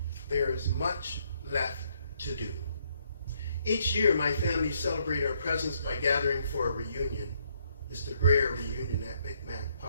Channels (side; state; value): both; inverted; correlation -0.71